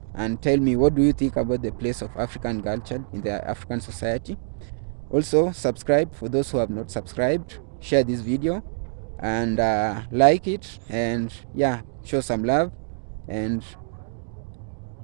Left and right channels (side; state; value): left; silent; digital silence